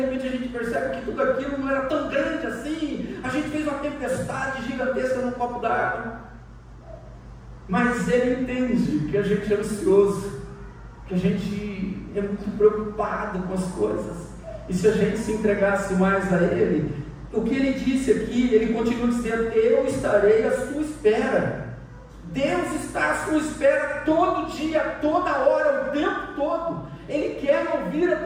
a gente percebe que tudo aquilo não era tão grande assim. A gente fez uma tempestade gigantesca num copo d'água, mas Ele entende que a gente é ansioso, que a gente é muito preocupado com as coisas, e se a gente se entregasse mais a Ele, o que Ele disse aqui, Ele continua dizendo: eu estarei à sua espera. Deus está à sua espera todo dia, toda hora, o tempo todo. Ele quer ouvir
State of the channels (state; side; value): identical; both; correlation 1.00